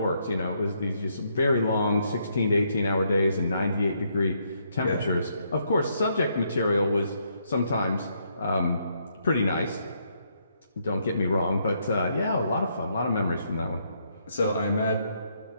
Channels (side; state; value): both; inverted; correlation -0.74